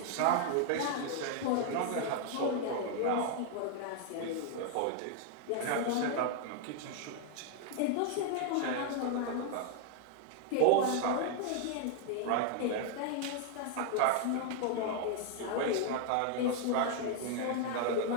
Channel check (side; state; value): both; different; correlation 0.00